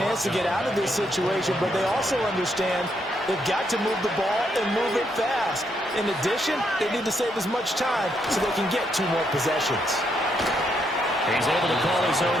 to get out of this situation, but they also understand they've got to move the ball and move it fast. In addition, they need to save as much time so they can get 2 more possessions. He's able to call his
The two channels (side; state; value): both; normal; correlation 0.76